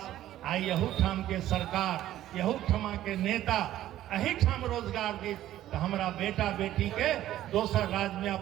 आई यहू ठाम के सरकार, यहू ठमा के नेता अही ठाम रोजगार दी, तो हमारा बेटा बेटी के दोसर राज्य में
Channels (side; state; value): left; quieter; 13.2 dB